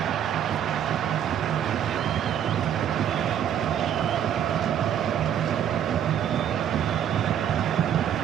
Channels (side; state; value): left; quieter; 9.6 dB